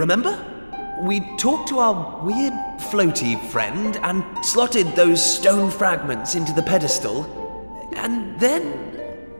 We talked to our weird floaty friend and slotted those stone fragments into the pedestal, and then...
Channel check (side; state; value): both; inverted; correlation -1.00